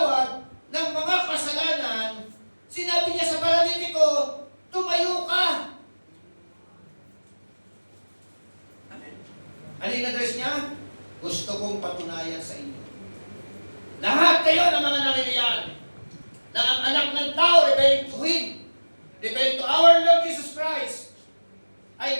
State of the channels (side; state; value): both; inverted; correlation -1.00